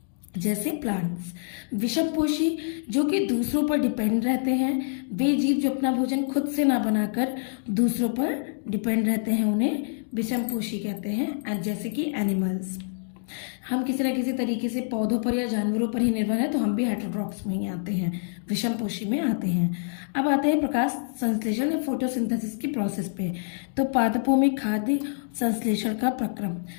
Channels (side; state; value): right; silent; digital silence